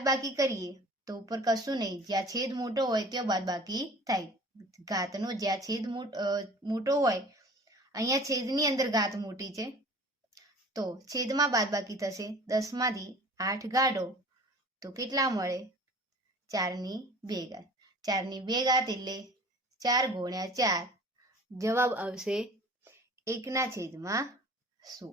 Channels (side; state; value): both; normal; correlation 0.44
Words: કરીએ તો ઉપર કશું નહીં, જ્યાં છેદ મોટો હોય ત્યાં બાદબાકી થાય. ઘાતનો જ્યાં છેદ મોટો હોય, અહીંયા છેદની અંદર ઘાત મોટી છે તો છેદમાં બાદબાકી થશે. 10 માંથી 8 કાઢો તો કેટલા મળે? 4 ની 2 ઘાત. 4 ની 2 ઘાત એટલે 4 ગુણ્યા 4 જવાબ આવશે